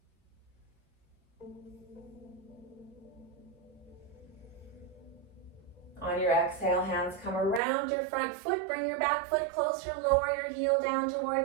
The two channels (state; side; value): drops out; left; at 7.6 s